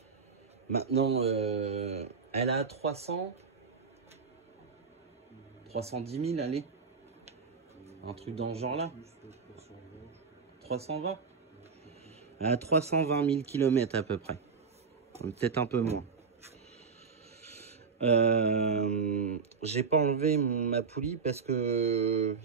Maintenant, elle a 310 000, allez. Un truc dans ce genre-là. 320. Elle a 320 000 km à peu près. Peut-être un peu moins. J'ai pas enlevé ma poulie parce que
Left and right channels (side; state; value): left; quieter; 5.4 dB